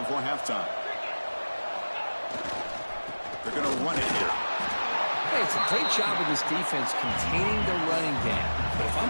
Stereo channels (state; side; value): inverted; both; correlation -1.00